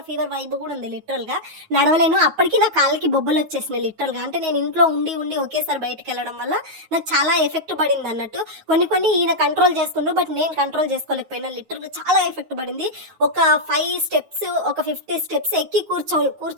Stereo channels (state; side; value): late; left; 9.4 ms